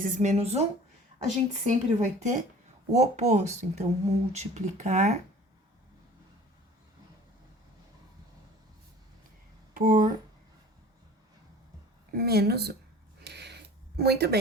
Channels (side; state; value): both; normal; correlation 0.45